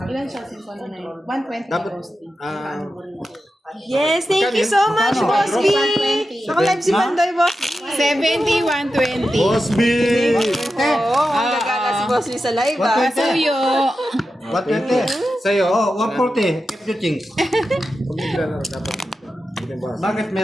Ilan siya? 120 Dapat... Boss D. Yes, thank you so much, Boss B. Naka-live si Pandoy, Boss B. 70, 120. Boss B! Oo, ang gagana si Boss B sa live, ah. Pasuyo. What 20? Sa'yo? Oh, 140. Keep your things. Bakit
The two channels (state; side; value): normal; both; correlation 0.90